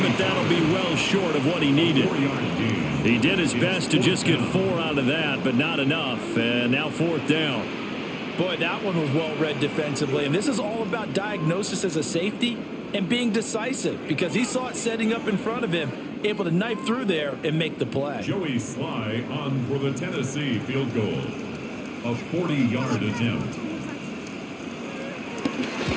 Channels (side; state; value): both; identical; correlation 1.00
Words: but that'll be well short of what he needed. He did his best to just get 4 out of that, but not enough. And now 4th down. Boy, that one was well read defensively, and this is all about diagnosis as a safety and being decisive because he saw it setting up in front of him, able to knife through there and make the play. Joey Sly on for the Tennessee field goal. A 40-yard attempt.